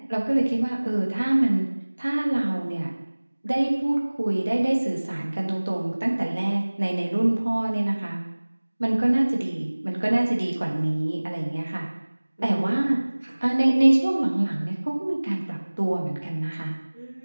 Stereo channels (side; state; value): both; inverted; correlation -1.00